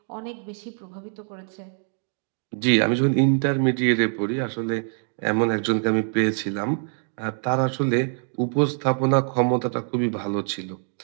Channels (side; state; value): left; silent; 57 dB below the other